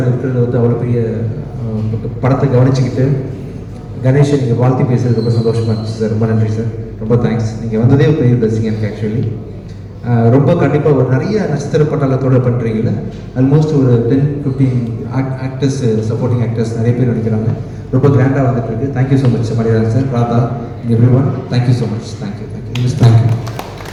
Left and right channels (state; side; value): identical; both; correlation 1.00